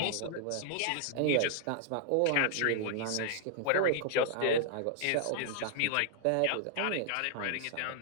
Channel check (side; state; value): both; different; correlation 0.00